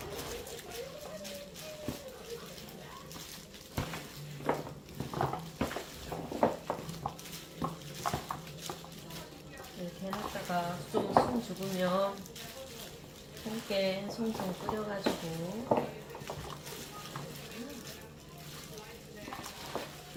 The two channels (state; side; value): identical; both; correlation 1.00